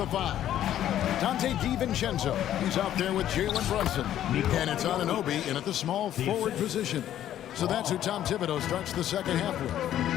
5. Dante DiVincenzo, he's out there with Jalen Brunson. And it's Anunoby in at the small forward position. So that's who Tom Thibodeau starts the second half with.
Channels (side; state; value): right; quieter; 11.6 dB